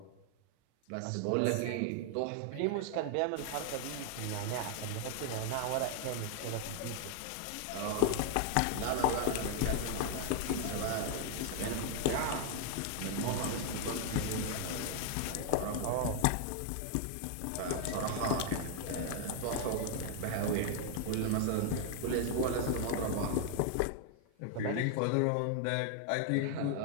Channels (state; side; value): different; both; correlation 0.00